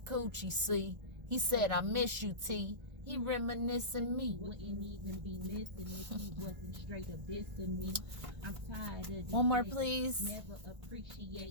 see, he said, I miss you, T. He reminiscing me. Wouldn't even be missing if he wasn't straight up dissing me. I'm tired of One more, please. Never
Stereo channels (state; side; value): late; left; 1.5 ms